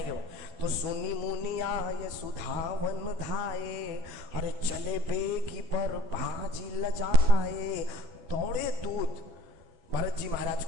वो। तो सुनी मुनि आए सुधावन धाये, अरे चले बेगी पर भाजी लजाए। दौड़े दूत भरत जी महाराज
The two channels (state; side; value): late; left; 12 ms